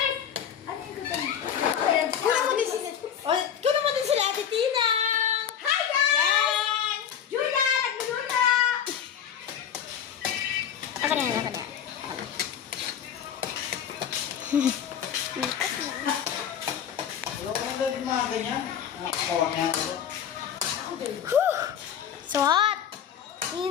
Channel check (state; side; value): quieter; right; 8.8 dB